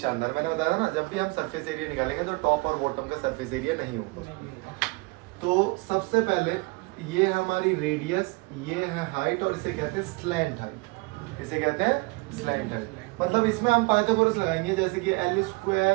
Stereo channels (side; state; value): left; quieter; 27.2 dB